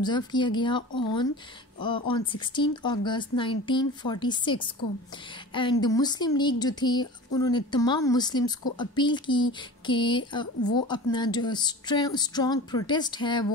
किया गया ऑन 16 अगस्त 1946 को. एंड मुस्लिम लीग जो थी उन्होंने तमाम मुस्लिम्स को अपील की कि वो अपना जो स्ट्रॉन्ग प्रोटेस्ट है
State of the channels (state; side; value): normal; both; correlation 0.36